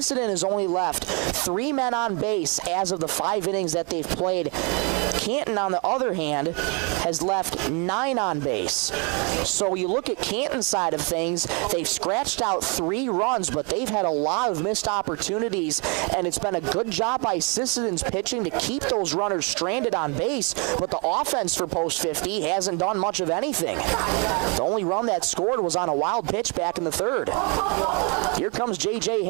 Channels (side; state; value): left; quieter; 33.7 dB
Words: has only left 3 men on base as of the 5 innings that they've played. Canton, on the other hand, has left 9 on base. So you look at Canton's side of things, they've scratched out 3 runs, but they've had a lot of missed opportunities, and it's been a good job by Sisseton's pitching to keep those runners stranded on base, but the offense for Post 50 hasn't done much of anything. The only run that scored was on a wild pitch back in the 3rd. Here comes J.J.